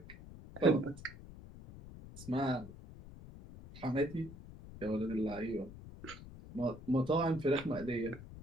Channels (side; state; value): left; noise; rumble, 15 dB below the sound